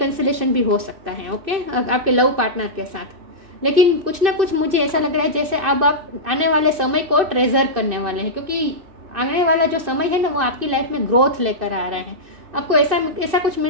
भी हो सकता है, ओके, आपके लव पार्टनर के साथ। लेकिन कुछ ना कुछ मुझे ऐसा लग रहा है जैसे अब आप आने वाले समय को ट्रेजर करने वाले हैं, क्योंकि आने वाला जो समय है ना वो आपकी लाइफ में ग्रोथ लेकर आ रहा है। आपको ऐसा कुछ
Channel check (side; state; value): left; late; 2.6 ms